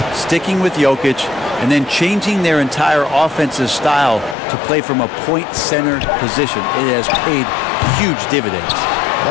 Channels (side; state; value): right; drops out; at 4.4 s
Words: sticking with Jokic and then changing their entire offensive style to play from a point center position. It has paid huge dividends.